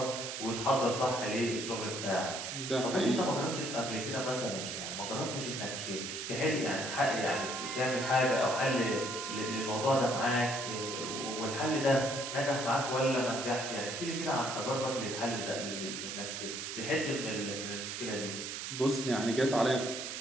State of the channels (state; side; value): noise; right; hiss, 5 dB below the sound